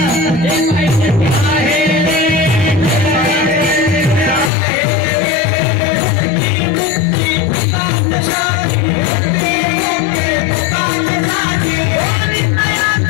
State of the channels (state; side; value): drops out; right; at 4.5 s